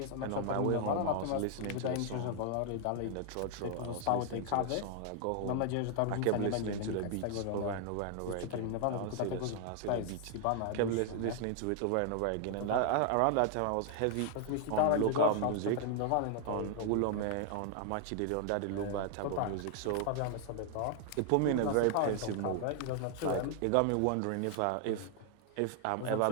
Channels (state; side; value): different; both; correlation 0.00